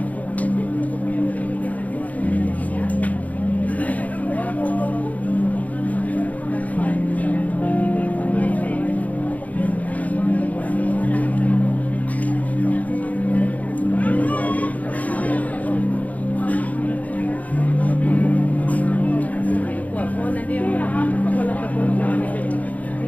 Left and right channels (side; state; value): right; late; 0.074 ms